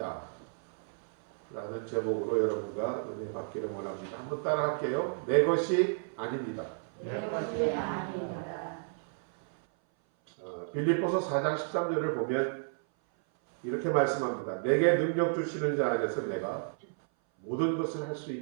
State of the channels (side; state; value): left; silent; 56 dB below the other